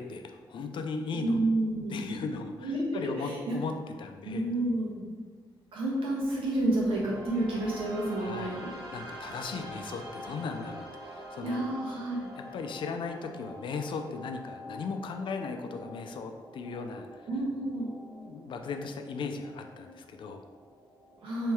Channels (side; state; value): both; normal; correlation 0.70